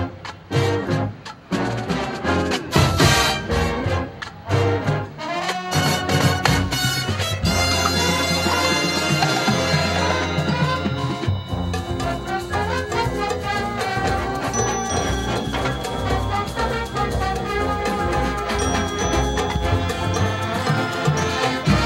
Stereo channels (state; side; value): identical; both; correlation 1.00